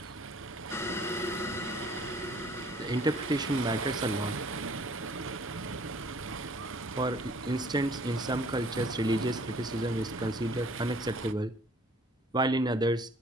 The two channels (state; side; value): normal; both; correlation 0.56